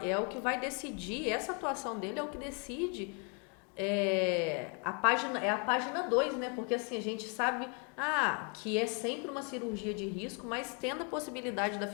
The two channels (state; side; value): quieter; right; 36.4 dB